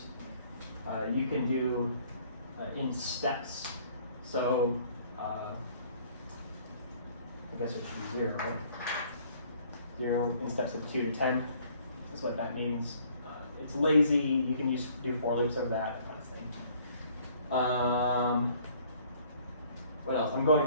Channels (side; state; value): both; inverted; correlation -0.58